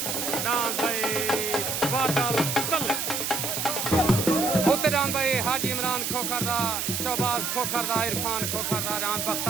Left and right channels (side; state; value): right; noise; hiss, 1 dB below the sound